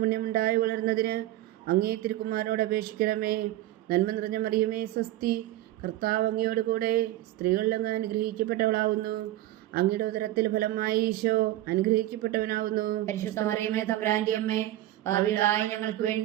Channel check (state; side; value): quieter; left; 14.9 dB